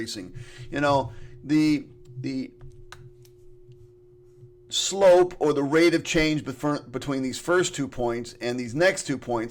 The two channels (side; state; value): both; identical; correlation 1.00